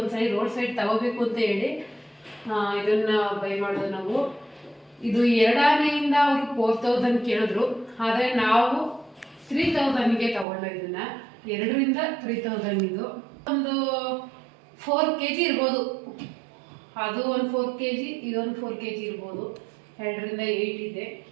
ರೋಡ್ ಸೈಡ್ ತಗೋಬೇಕು ಅಂತ ಹೇಳಿ ಇದನ್ನ ಬೈ ಮಾಡೋದು ನಾವು. ಇದು 2 ಆನೆಯಿಂದ ಅವರು 4000 ಕೇಳಿದ್ರು, ಆದರೆ ನಾವು 3000ಗೆ ತಗೊಂಡು ಇದನ್ನ 2ರಿಂದ 3000 ಇದು ಒಂದು 4 kg ಇರ್ಬೋದು. ಅದು ಒಂದು 4 kg, ಇದೊಂದು 4 kg ಇರ್ಬೋದು. 2ರಿಂದ 8 ಇದೆ.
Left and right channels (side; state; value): left; drops out; at 10.5 s